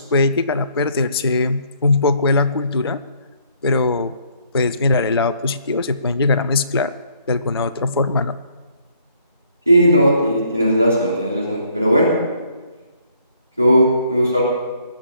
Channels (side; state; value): both; inverted; correlation -0.66